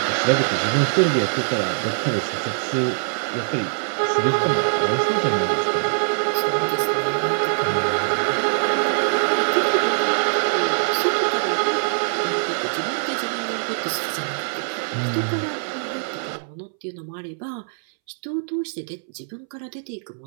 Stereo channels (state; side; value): silent; left; 63 dB below the other